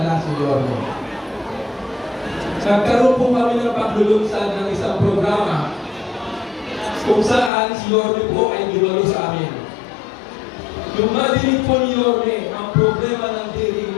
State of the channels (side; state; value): right; drops out; at 7.5 s